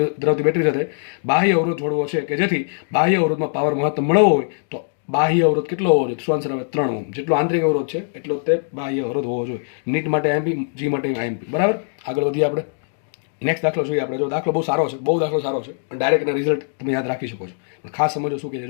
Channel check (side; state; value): right; silent; digital silence